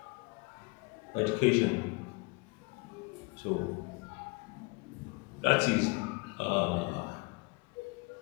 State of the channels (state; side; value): quieter; right; 27.8 dB